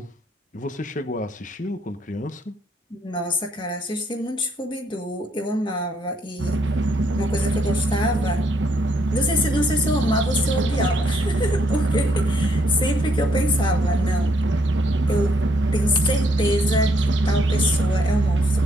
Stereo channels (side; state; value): both; normal; correlation 0.72